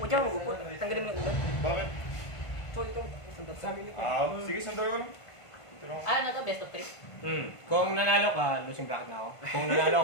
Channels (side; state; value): right; late; 1.5 ms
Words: dyan, mag-upo. Tanggalin mo yung ulan. Bakit? So, ito, sandal. Sige, sandal ko lang. Ito lang. Ano to? Best of 3? Kung nanalo ka, losing bracket na ako. Kung nanalo